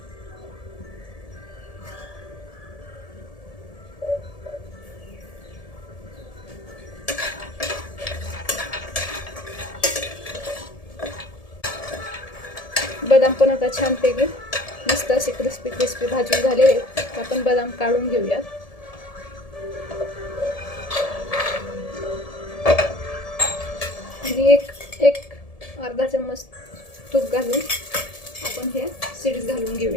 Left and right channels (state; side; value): late; right; 1.7 ms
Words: बदाम पण आता छानपैकी मस्त असे क्रिस्पी क्रिस्पी भाजून झाले. आपण बदाम काढून घेऊयात. आणि एक अर्धा चम्मच तूप घालून आपण हे सीड्स घालून